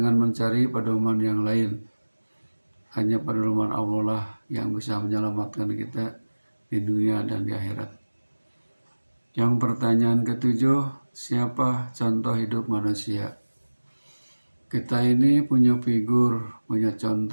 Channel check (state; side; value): inverted; both; correlation -1.00